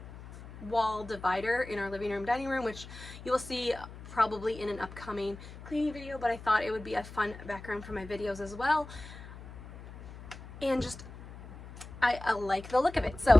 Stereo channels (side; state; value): left; noise; hum, 15 dB below the sound